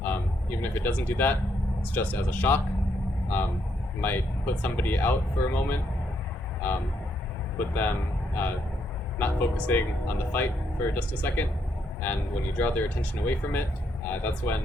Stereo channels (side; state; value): both; normal; correlation 0.76